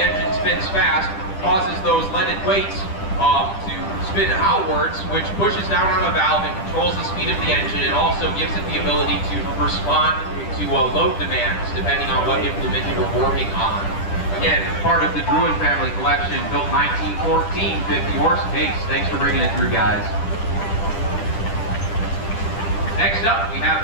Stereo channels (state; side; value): late; right; 10 ms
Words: engine spins fast, causes those leaded weights to spin outwards, which pushes down on a valve and controls the speed of the engine. It also gives it the ability to respond to load demands, depending on what implement you're working on. Again, part of the Druin family collection, built 1914, 50 horse Case. Thanks for bringing it through, guys. Next up, we have